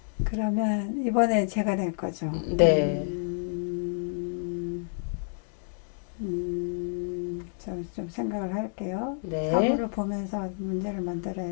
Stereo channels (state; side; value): silent; right; digital silence